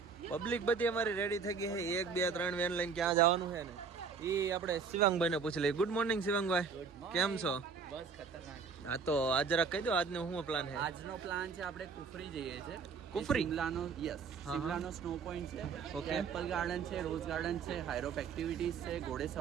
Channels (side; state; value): left; quieter; 5.5 dB